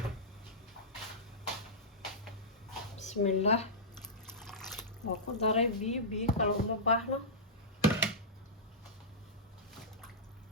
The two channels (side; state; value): both; normal; correlation -0.15